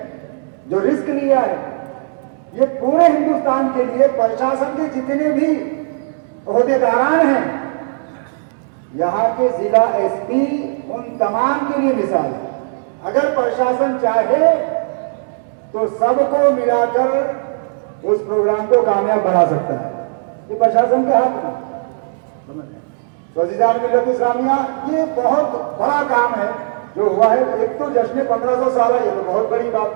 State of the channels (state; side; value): silent; left; digital silence